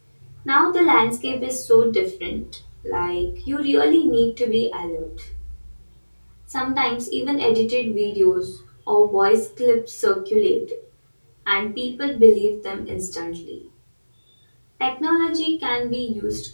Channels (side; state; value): both; inverted; correlation -1.00